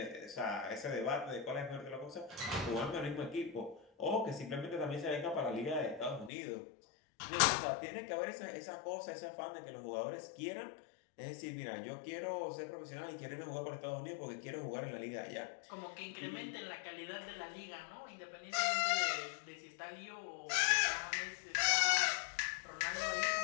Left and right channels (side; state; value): right; drops out; at 6.3 s